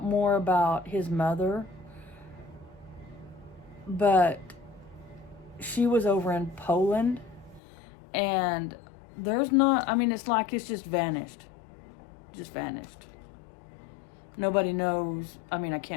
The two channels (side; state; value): right; drops out; at 7.6 s